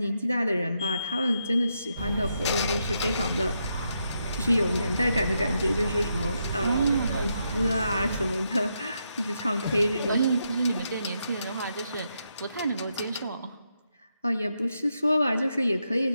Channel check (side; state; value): both; inverted; correlation -0.81